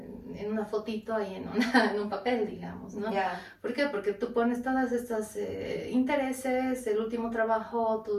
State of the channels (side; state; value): both; identical; correlation 1.00